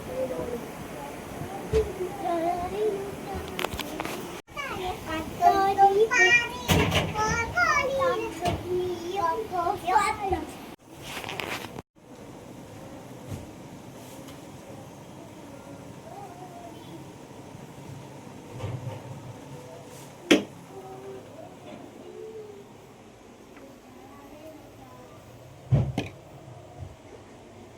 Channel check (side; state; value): both; identical; correlation 1.00